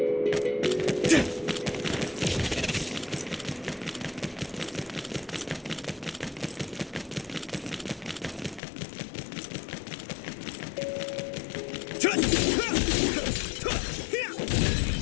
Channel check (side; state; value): right; drops out; at 8.6 s